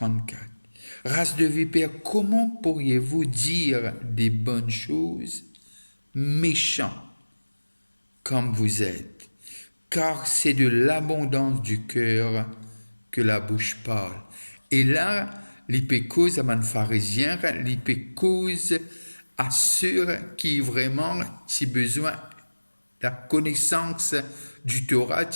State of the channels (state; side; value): inverted; both; correlation -1.00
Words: Race de vipères, comment pourriez-vous dire des bonnes choses, méchants comme vous êtes? Car c'est de l'abondance du cœur que la bouche parle. Et là, l'hypécose à un pharisien, l'hypécose à ceux qui vraiment, si besoin, la connaissance du Torah,